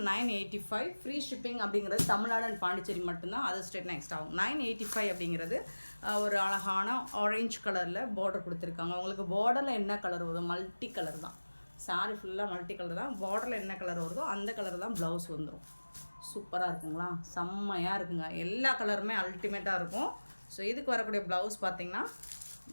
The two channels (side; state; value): both; inverted; correlation -1.00